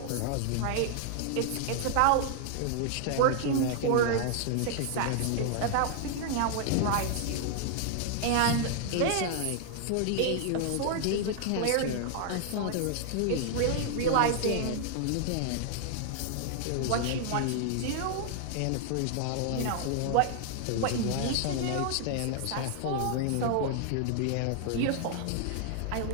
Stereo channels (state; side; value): different; both; correlation 0.00